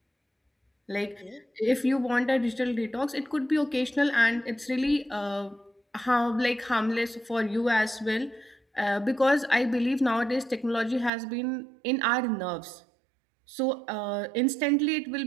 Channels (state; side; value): drops out; left; at 11.1 s